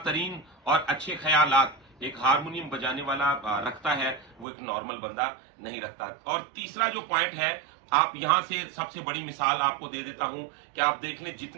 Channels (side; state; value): left; drops out; at 4.5 s